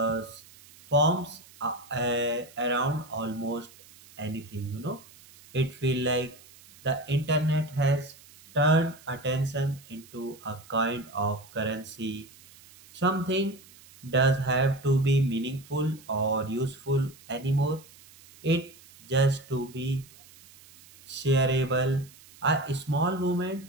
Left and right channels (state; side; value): noise; right; hiss, 23 dB below the sound